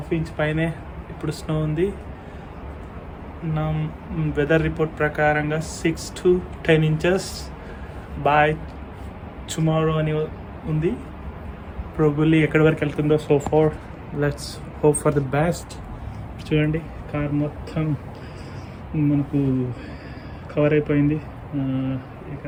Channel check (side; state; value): both; identical; correlation 1.00